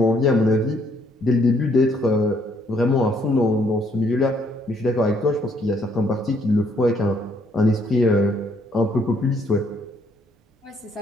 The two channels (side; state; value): both; normal; correlation 0.68